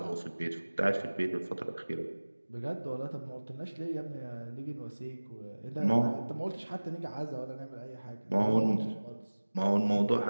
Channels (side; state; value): both; inverted; correlation -1.00